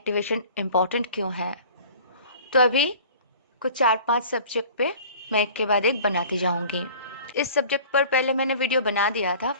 important क्यों है। तो अभी कुछ 4-5 सब्जेक्ट पे मैं एक के बाद एक बनाती जाऊंगी। इस सब्जेक्ट पर पहले मैंने वीडियो बना दिया था,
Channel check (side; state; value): both; inverted; correlation -0.45